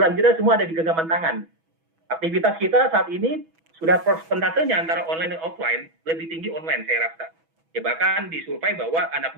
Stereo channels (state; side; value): late; left; 6.1 ms